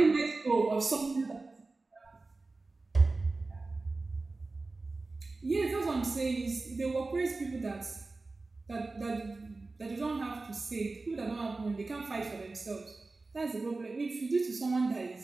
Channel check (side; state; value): left; quieter; 3.5 dB